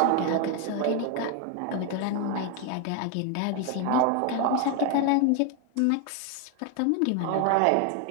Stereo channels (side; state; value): both; different; correlation 0.01